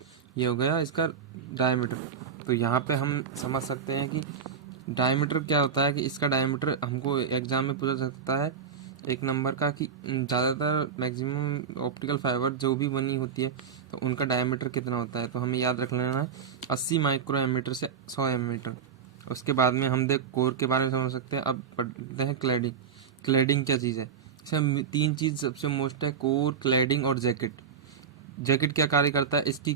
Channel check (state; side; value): quieter; left; 6.9 dB